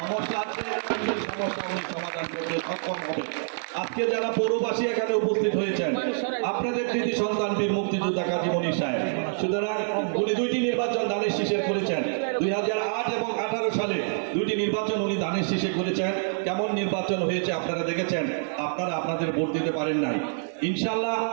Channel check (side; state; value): left; silent; 60 dB below the other